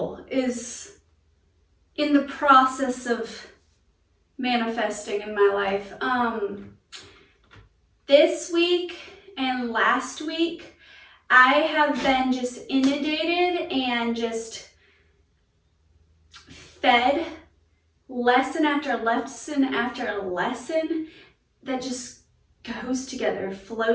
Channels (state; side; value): identical; both; correlation 1.00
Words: is in the process of manifesting in my life. This week and last week, I have been just inundated and just fed lesson after lesson after lesson that just goes together,